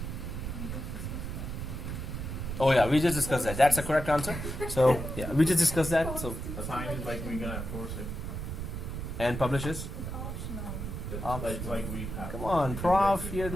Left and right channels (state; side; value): noise; right; rumble, 5 dB below the sound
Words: Oh yeah, we just discussed that. That's the correct answer. So yeah, we just discussed that. So Assign is like we're gonna force it. and publishes. That's Optional. like we have. Come on, prof. You're